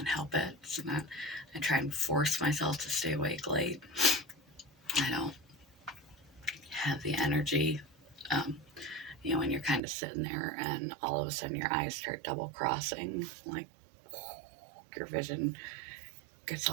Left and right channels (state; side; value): drops out; left; at 9.8 s